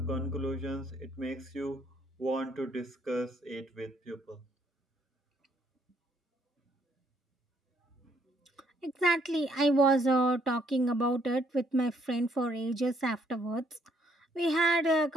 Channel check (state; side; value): normal; both; correlation 0.68